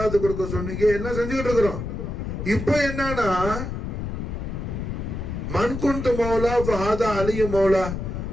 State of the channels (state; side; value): noise; left; rumble, 5 dB below the sound